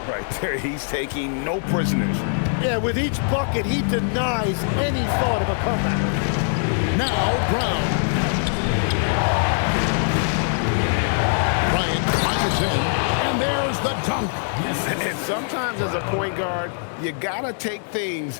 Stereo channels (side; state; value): right; silent; digital silence